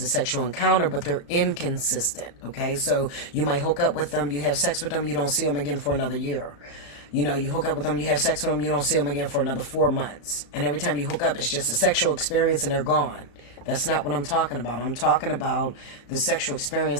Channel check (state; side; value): late; right; 35 ms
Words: a sexual encounter, but they're inconsistent. Okay. So you might hook up with them, you have sex with them, you don't see them again for another year. You know, you hook up with them, you have sex with them, you don't see them again for another 4 months. And every time you hook up, it's just a sexual experience and they're gone. That's not what I'm talking about. I'm talking about the sexual